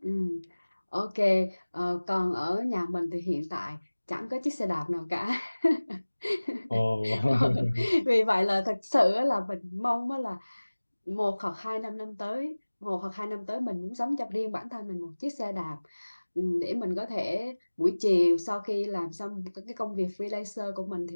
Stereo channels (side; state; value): both; inverted; correlation -1.00